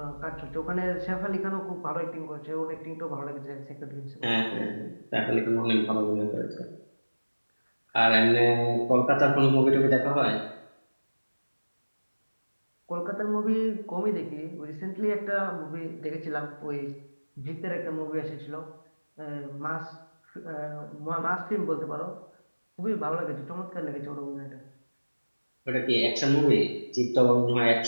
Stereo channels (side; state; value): both; inverted; correlation -1.00